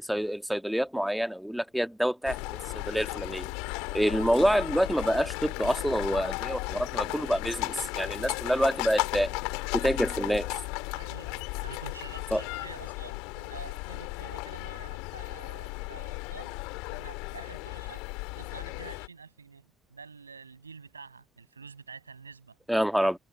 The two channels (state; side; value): normal; both; correlation 0.81